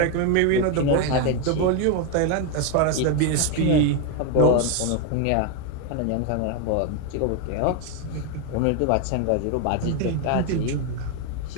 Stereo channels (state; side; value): different; both; correlation 0.01